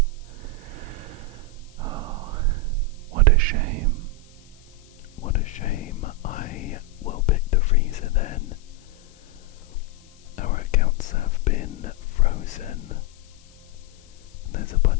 Oh, what a shame. What a shame. I will pick the freezer then. Our accounts have been frozen. There's a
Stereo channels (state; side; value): noise; left; hiss, 28 dB below the sound